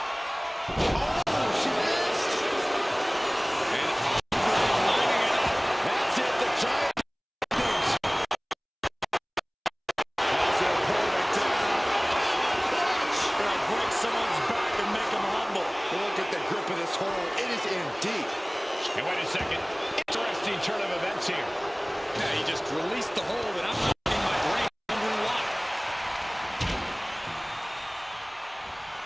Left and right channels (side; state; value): both; identical; correlation 1.00